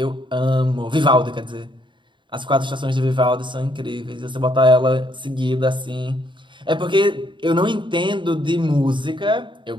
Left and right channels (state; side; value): late; left; 0.23 ms